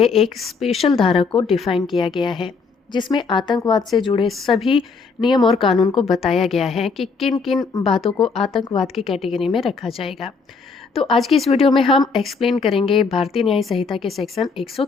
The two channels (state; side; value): quieter; right; 4.9 dB